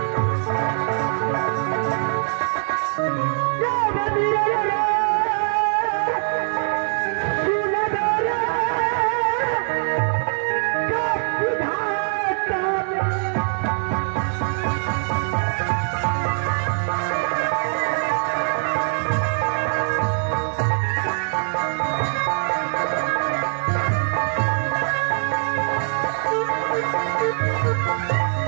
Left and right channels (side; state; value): left; silent; 64 dB below the other